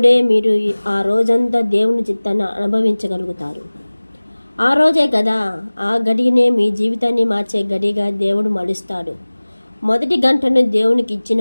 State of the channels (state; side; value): inverted; both; correlation -1.00